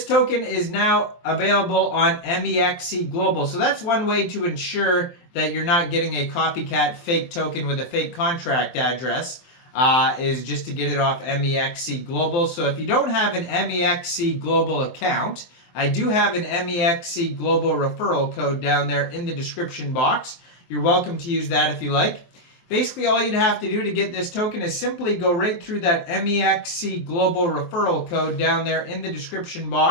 token is now available on Mexc Global. So that's one way to ensure that you're not getting a copycat fake token with a fake contract address. Is just to get it off Mexc Global. So if you don't have an Mexc Global account, I do have an Mexc Global referral code down there in the description box. You're welcome to use that if you like. Basically, all you'd have to do to get this token is simply go right through that Mexc Global referral code down there in the description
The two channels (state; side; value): late; right; 23 ms